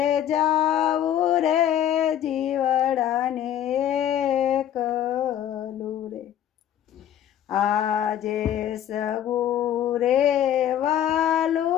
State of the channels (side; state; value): right; quieter; 10.7 dB